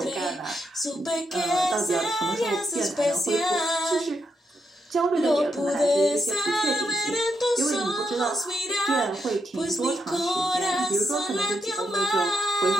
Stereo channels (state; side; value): normal; both; correlation 0.81